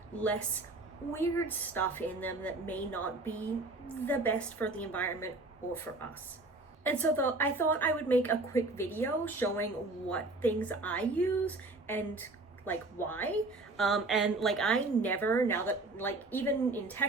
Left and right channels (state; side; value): quieter; left; 3.1 dB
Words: less weird stuff in them that may not be the best for the environment or for us. And so I thought I would make a quick video showing what things I use and like why. I never, now that even in